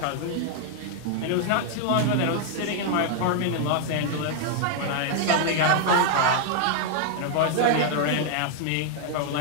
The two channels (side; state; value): both; different; correlation 0.00